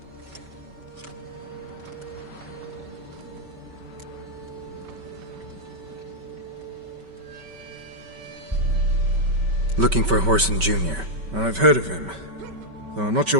Looking for Whoreson Jr. I've heard of him. Though I'm not sure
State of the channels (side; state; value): left; late; 5.2 ms